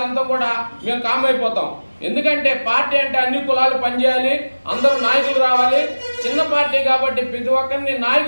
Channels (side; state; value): both; inverted; correlation -1.00